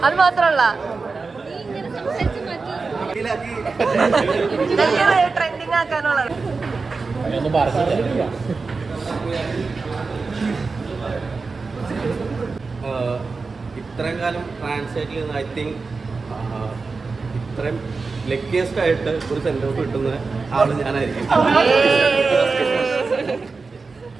അത് മാത്രമല്ല ട്രെൻഡിങ് ആക്കാനുള്ള ഇത്രയും കാലം ട്രാൻസ്ലേറ്റിൽ നിന്ന് ഐ തിങ്ക് ഇത്രയും ലക്കിയസ്റ്റ് ആയിട്ട് ഒരു സെൻഡ് ഓഫ് കിട്ടുന്ന ആള് ഞാനായിരിക്കും.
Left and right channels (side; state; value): left; quieter; 4.3 dB